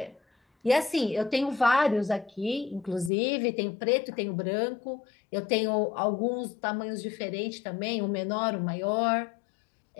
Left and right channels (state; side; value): drops out; right; at 3.1 s